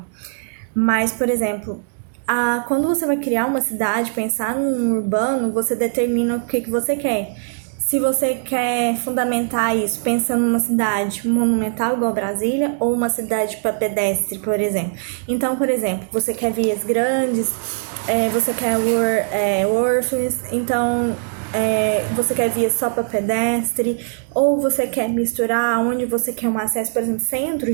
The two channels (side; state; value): left; silent; 65 dB below the other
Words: Mas, por exemplo, quando você vai criar uma cidade, pensar num urbano, você determina o que você quer. Se você quer fundamentar isso pensando numa cidade monumental igual Brasília ou uma cidade para pedestre, por exemplo. Então, por exemplo, você quer vias grandes, você quer orphans, então você quer vias só para pedestre, ou você quer misturar onde você quer um acesso, por exemplo, centro,